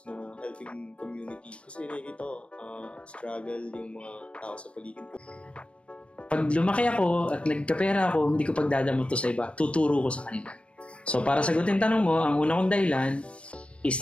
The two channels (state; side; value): late; right; 0.060 ms